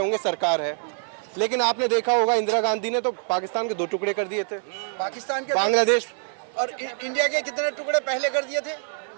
होंगे, सरकार है, लेकिन आपने देखा होगा इंदिरा गांधी ने तो पाकिस्तान के 2 टुकड़े कर दिए थे। पाकिस्तान के, बांग्लादेश और इंडिया के कितने टुकड़े पहले कर दिए थे?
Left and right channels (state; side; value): silent; left; digital silence